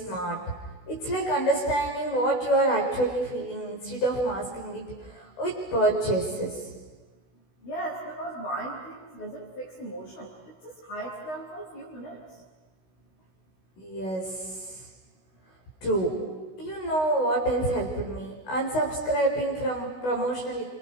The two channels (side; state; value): right; late; 16 ms